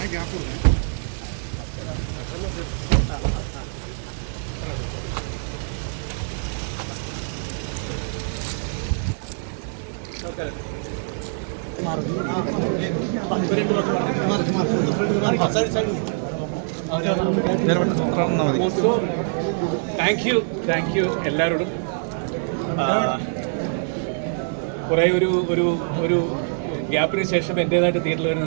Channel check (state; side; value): silent; left; digital silence